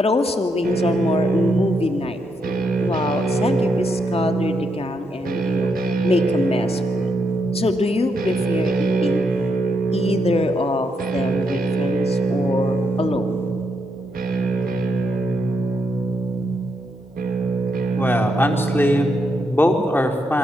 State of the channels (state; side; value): normal; both; correlation 0.79